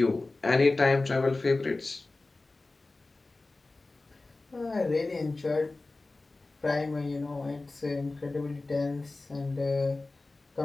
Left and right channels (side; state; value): right; quieter; 3.2 dB